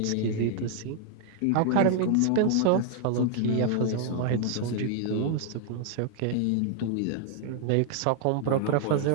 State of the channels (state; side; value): different; both; correlation 0.00